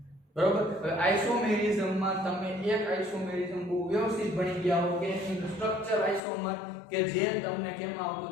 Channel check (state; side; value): drops out; right; at 6.2 s